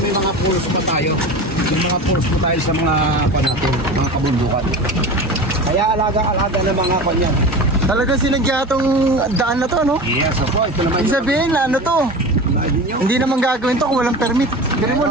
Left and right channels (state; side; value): normal; both; correlation 0.31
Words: mga pools pa tayo. May mga pools pa tayo sa mga natin, mga kabundukan. Kaya alaga-alaga ng mga kanyan. Talaga sinadya itong daan na to, no? Yes, opo. Ito naman Ibig sabihin, ano to? Hindi naman gagawin to kung walang permit. Pero mo